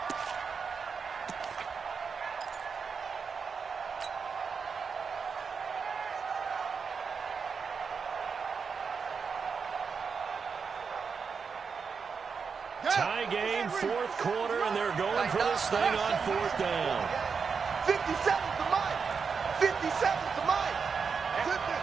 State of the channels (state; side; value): quieter; left; 5.7 dB